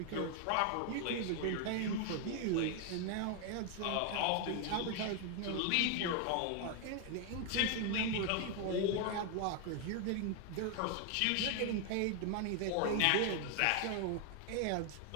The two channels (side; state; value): both; different; correlation 0.01